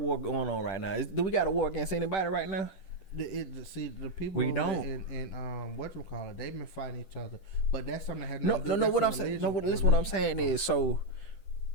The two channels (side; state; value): right; late; 10 ms